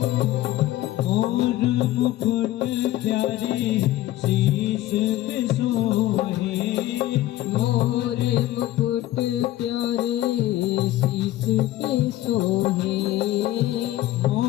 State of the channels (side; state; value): right; quieter; 14.9 dB